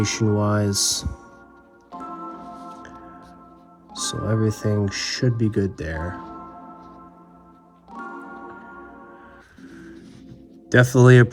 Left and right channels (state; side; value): identical; both; correlation 1.00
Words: wise. So everything should be good there. Definitely a